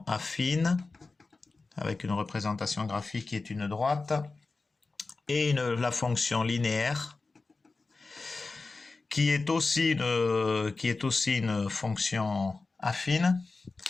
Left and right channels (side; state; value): right; quieter; 3.8 dB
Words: affine, avec une représentation graphique qui est une droite, et la fonction linéaire, qui est aussi une fonction affine.